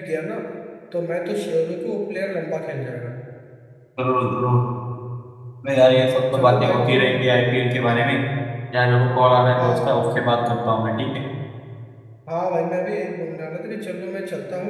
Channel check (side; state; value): both; identical; correlation 1.00